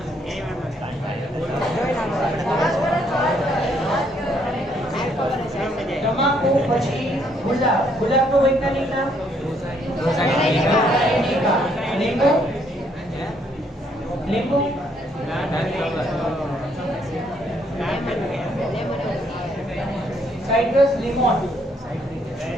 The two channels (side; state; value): both; normal; correlation 0.69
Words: તમાકુ પછી ગુલાબ. ગુલાબનું વૈજ્ઞાનિક નામ? લીંબુ. લીંબુ. સાઇટ્રસ, લીમોન.